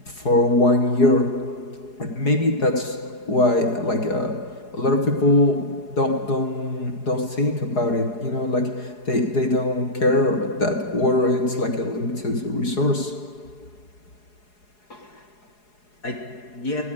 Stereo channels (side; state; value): right; late; 4.8 ms